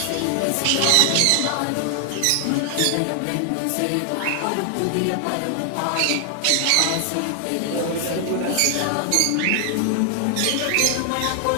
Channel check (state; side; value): different; both; correlation 0.00